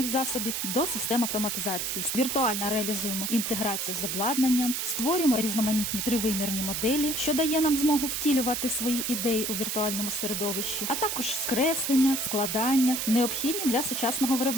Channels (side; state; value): right; noise; hiss, 2 dB below the sound